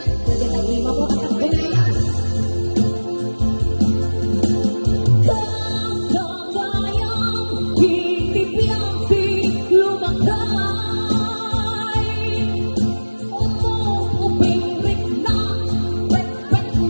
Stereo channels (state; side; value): inverted; both; correlation -1.00